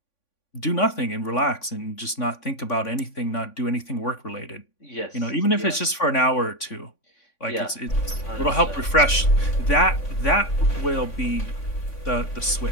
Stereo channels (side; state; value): right; late; 3.5 ms